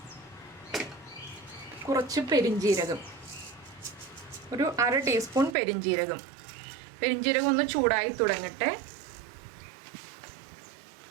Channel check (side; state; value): left; drops out; at 5.6 s